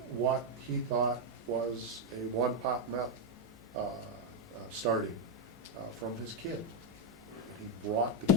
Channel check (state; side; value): normal; both; correlation 0.02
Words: what he thought was a one-pot meth starting from his kid. And he brought the